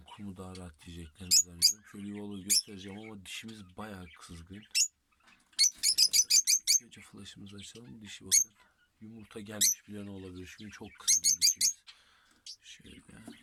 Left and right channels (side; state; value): both; identical; correlation 1.00